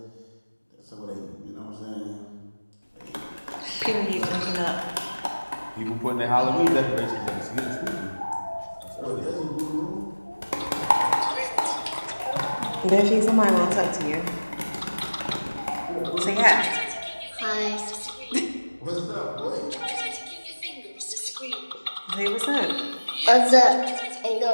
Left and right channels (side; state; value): both; inverted; correlation -1.00